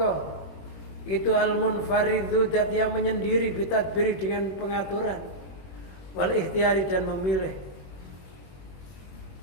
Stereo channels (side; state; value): right; late; 21 ms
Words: itu al-munfaridhu dat yang menyendiri, bitadbiri dengan pengaturan, wal ikhtiari dan memilih.